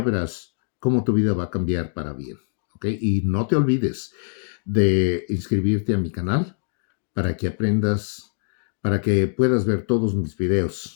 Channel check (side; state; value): right; silent; 57 dB below the other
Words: verás cómo tu vida va a cambiar para bien. ¿ok? Y no te olvides de inscribirte a mi canal para que aprendas, para que puedas ver todos mis